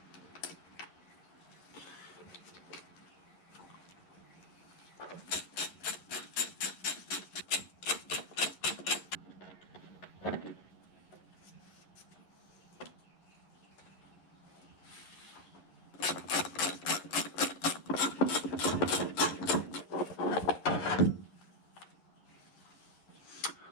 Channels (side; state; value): right; late; 11 ms